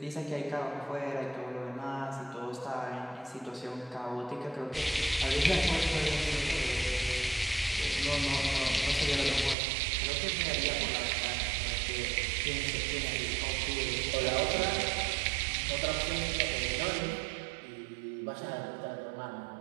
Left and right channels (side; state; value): left; drops out; at 9.6 s